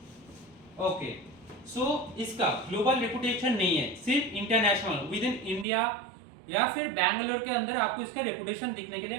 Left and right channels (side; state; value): left; drops out; at 5.7 s